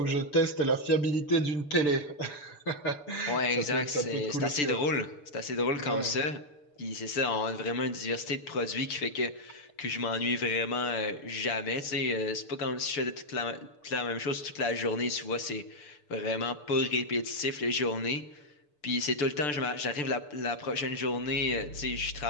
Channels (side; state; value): right; late; 6.8 ms